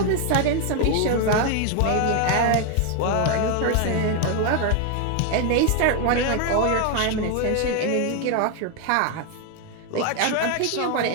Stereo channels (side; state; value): both; different; correlation 0.01